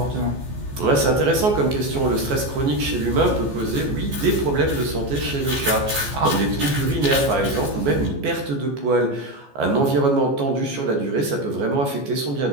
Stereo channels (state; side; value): late; left; 14 ms